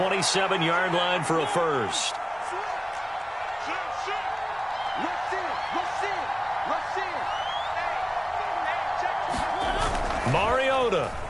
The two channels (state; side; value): identical; both; correlation 1.00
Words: line for a first. Mariota.